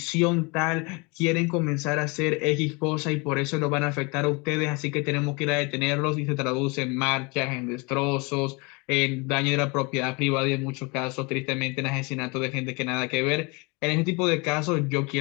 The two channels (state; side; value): quieter; right; 28.8 dB